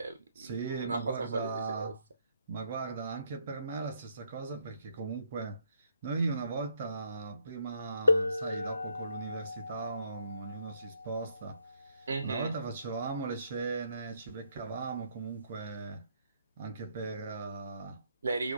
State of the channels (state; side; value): inverted; both; correlation -0.73